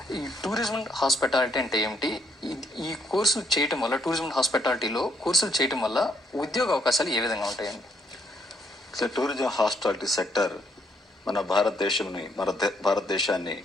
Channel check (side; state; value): both; normal; correlation 0.71